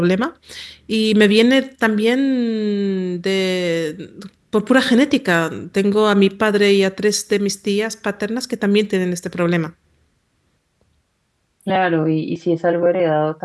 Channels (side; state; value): both; identical; correlation 1.00